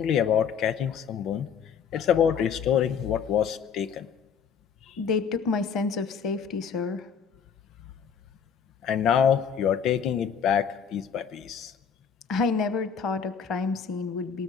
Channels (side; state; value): right; quieter; 7.0 dB